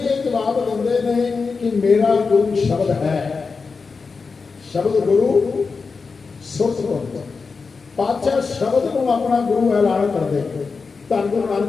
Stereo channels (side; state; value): right; quieter; 4.7 dB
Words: ਇਹ ਜਵਾਬ ਦਿੰਦੇ ਨੇ ਕਿ ਮੇਰਾ ਗੁਰੂ ਸ਼ਬਦ ਹੈ। ਸ਼ਬਦ ਗੁਰੂ ਸੁਰਤ ਗੁਰੂ। ਪਾਤਸ਼ਾਹ ਸ਼ਬਦ ਨੂੰ ਆਪਣਾ ਗੁਰੂ ਐਲਾਨ ਕਰਦੇ। ਧੰਨ ਗੁਰੂ